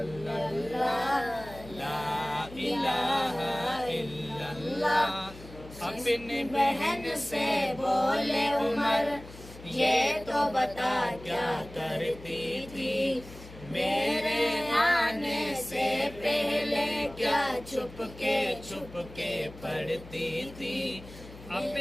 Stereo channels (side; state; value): left; noise; hum, 17 dB below the sound